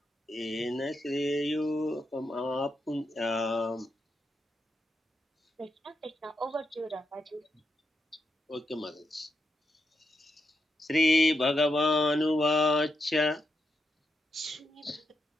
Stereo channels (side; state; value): both; normal; correlation 0.84